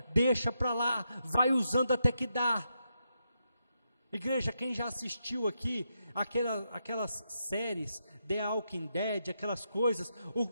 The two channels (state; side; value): inverted; both; correlation -0.83